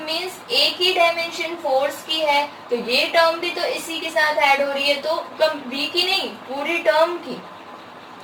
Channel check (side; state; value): both; identical; correlation 1.00